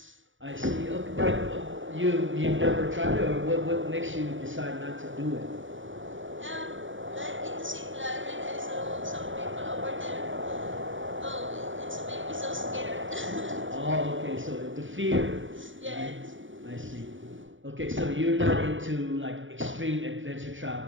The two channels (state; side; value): late; left; 0.56 ms